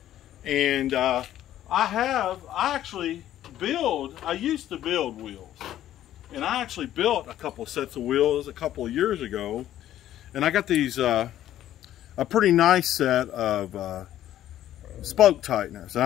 and I used to build wheels, and I actually built a couple sets of wheels a couple of years ago, and I got these a pretty nice set of spoke tighteners. And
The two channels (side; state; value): right; quieter; 12.4 dB